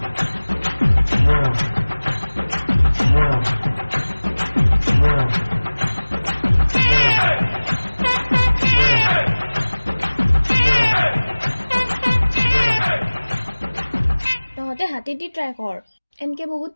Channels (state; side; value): inverted; both; correlation -1.00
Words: তহঁতে হাতেদি ট্ৰাই কৰ, এনকে বহুত